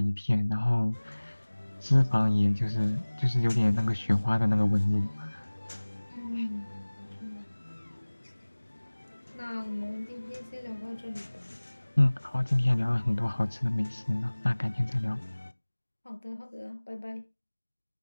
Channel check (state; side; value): inverted; both; correlation -1.00